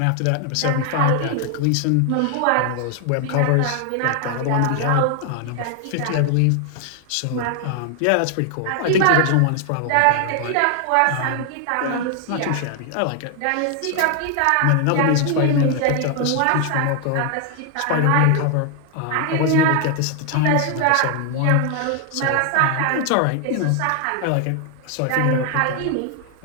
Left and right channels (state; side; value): different; both; correlation 0.00